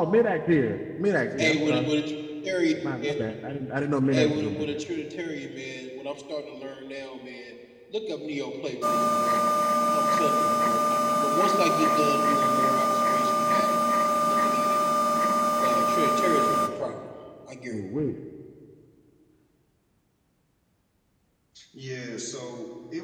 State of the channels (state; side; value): identical; both; correlation 1.00